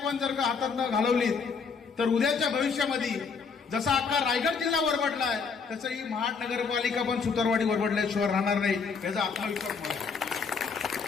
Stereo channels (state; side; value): quieter; right; 5.4 dB